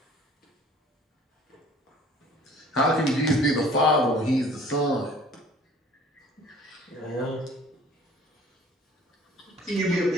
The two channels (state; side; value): normal; both; correlation 0.51